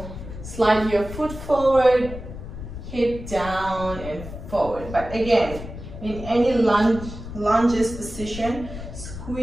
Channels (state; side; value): noise; left; rumble, 11 dB below the sound